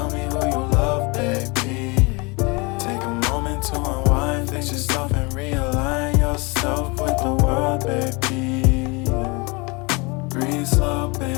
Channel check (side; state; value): right; quieter; 28.3 dB